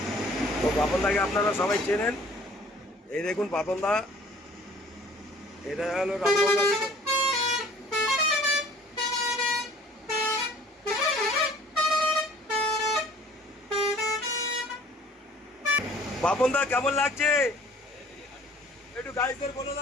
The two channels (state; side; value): normal; both; correlation 0.52